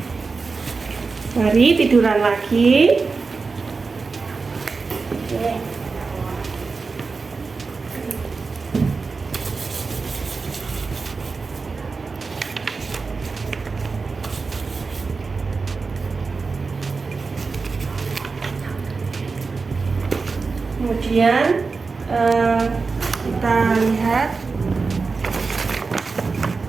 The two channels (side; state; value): left; quieter; 4.4 dB